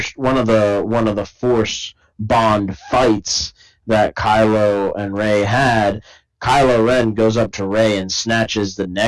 Force Bond fights that Kylo and Rey had, Kylo Ren goes up to Rey and snatches the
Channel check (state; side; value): identical; both; correlation 1.00